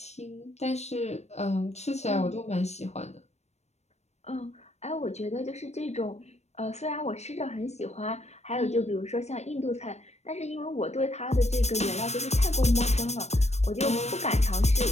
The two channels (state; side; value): late; right; 0.32 ms